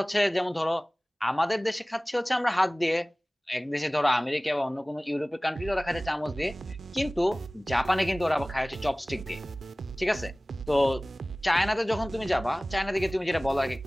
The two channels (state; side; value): normal; both; correlation 0.98